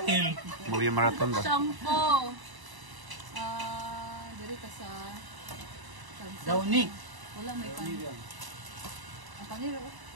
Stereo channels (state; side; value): late; left; 1.0 ms